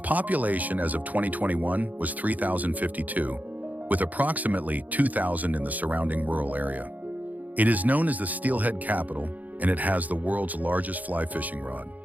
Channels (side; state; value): left; late; 0.079 ms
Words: as of 2021 was 3,052, with approximately 2,000 in the surrounding rural area. It is known as the Steelhead Capital, and it has the world's largest fly fishing rod.